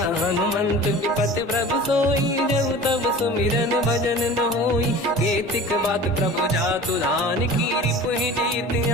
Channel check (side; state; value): both; normal; correlation 0.40